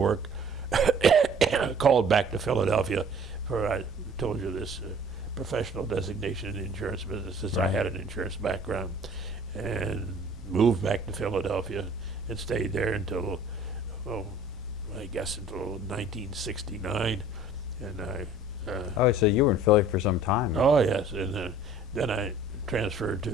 Called back to Philadelphia for, I told you this, professional designation in the insurance business, since I had an insurance background, and moved back to Philadelphia and stayed there until, I guess until 1969. And Oh, so you were in Philly for some time. oh yes, and then I transferred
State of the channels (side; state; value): both; normal; correlation 0.51